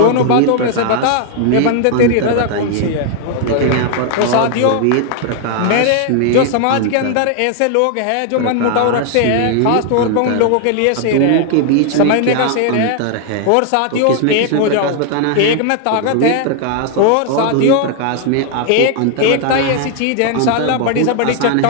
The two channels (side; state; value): both; different; correlation 0.00